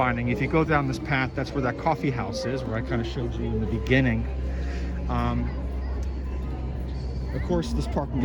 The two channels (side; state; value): both; identical; correlation 1.00